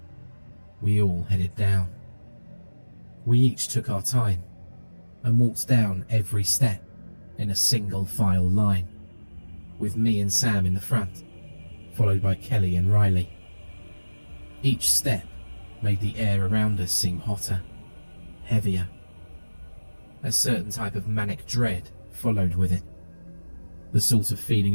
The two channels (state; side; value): inverted; both; correlation -1.00